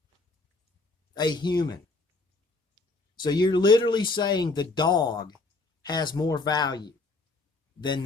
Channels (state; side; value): quieter; right; 3.5 dB